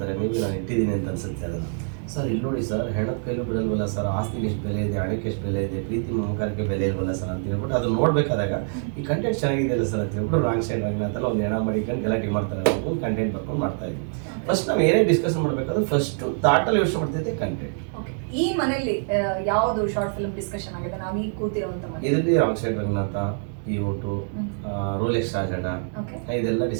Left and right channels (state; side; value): silent; left; 62 dB below the other